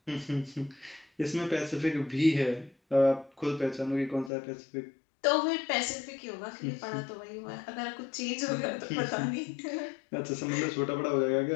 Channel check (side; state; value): right; drops out; at 4.3 s